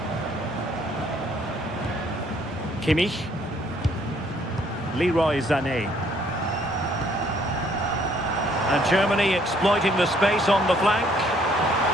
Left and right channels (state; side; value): normal; both; correlation 0.64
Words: Kimmich. Leroy Sané. And Germany exploiting the space on the flank.